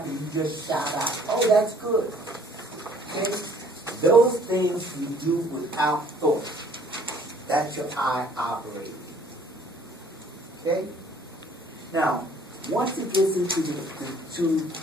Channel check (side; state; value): both; normal; correlation 0.58